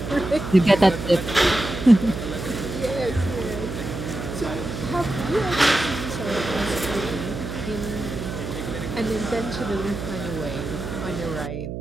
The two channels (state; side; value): noise; right; hum, 6 dB below the sound